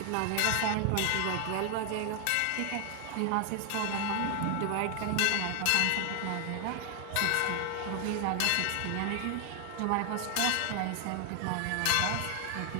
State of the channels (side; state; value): both; different; correlation 0.00